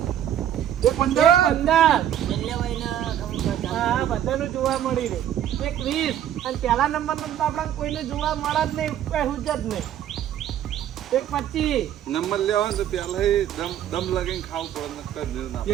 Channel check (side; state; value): left; quieter; 10.8 dB